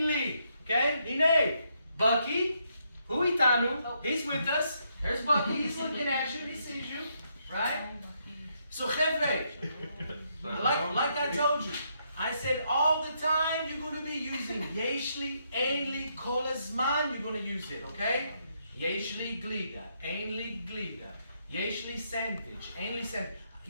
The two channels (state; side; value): inverted; both; correlation -0.76